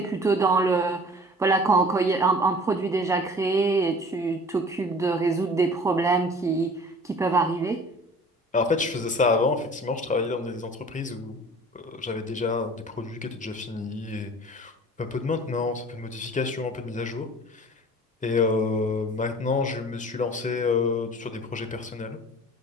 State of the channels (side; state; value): both; normal; correlation 0.45